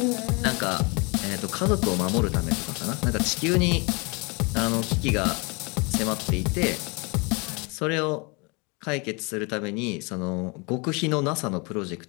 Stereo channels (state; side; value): quieter; right; 29.8 dB